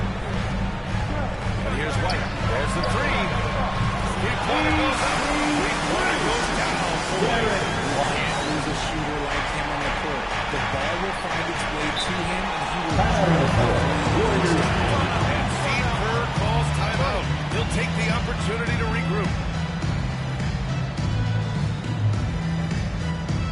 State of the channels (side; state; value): both; identical; correlation 1.00